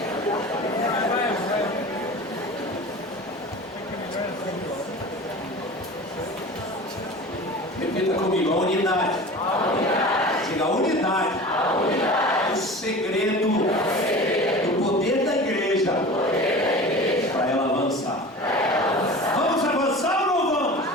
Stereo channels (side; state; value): both; normal; correlation 0.36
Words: Repita comigo: a unidade. Diga: a unidade. O segredo do poder da igreja para ela avançar. Vamos avançar ou não vamos?